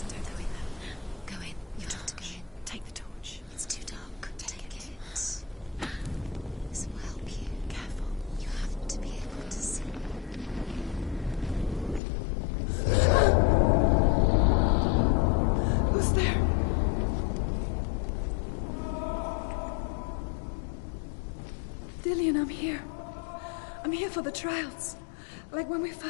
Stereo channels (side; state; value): right; drops out; at 12.0 s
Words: Don't go in there. Go in. You've got to go in. Take the torch. It's too dark. Take it. This will help you. Careful. You have to be able to see. Who's there? Dillian, I'm here. I'm here for the trials. Like when we